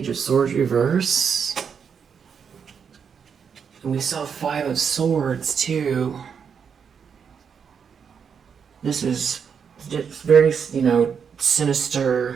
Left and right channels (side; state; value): left; quieter; 6.8 dB